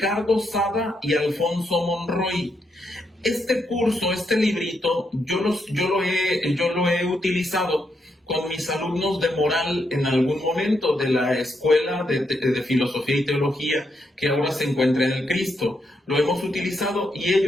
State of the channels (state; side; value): normal; both; correlation 0.80